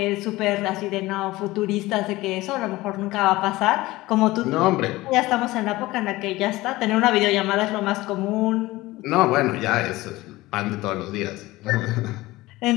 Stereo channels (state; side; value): quieter; right; 19.0 dB